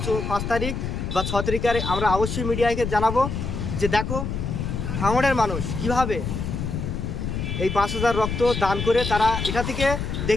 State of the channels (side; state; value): left; noise; rumble, 3 dB below the sound